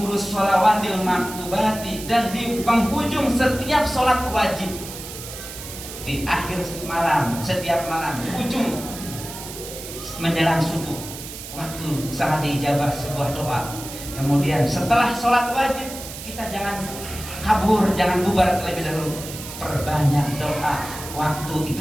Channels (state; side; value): noise; right; hiss, 11 dB below the sound